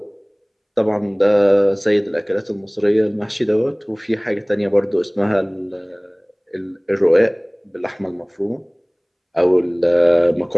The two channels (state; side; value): identical; both; correlation 1.00